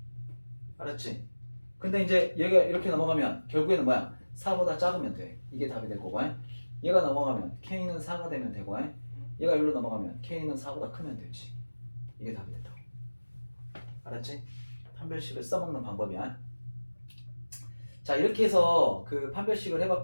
알았지? 근데 이제 얘가 이렇게 넘어가면 결국에는 뭐야? 4보다 작으면 돼. 이게 답이 될 거고. 얘가 넘어가면 k는 4가 되면 되고 얘가 여기로 넘어가면 k는 4보다 크면 되지. 이게 답이 된다고. 알았지? 판별식을 써먹는 방법이야. 자, 이렇게 해서 그 판별식을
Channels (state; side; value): inverted; both; correlation -1.00